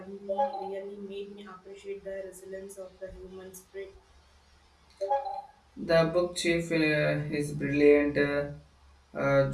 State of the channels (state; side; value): identical; both; correlation 1.00